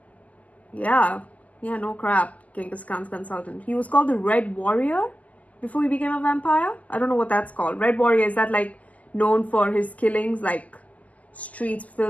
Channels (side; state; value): right; late; 0.075 ms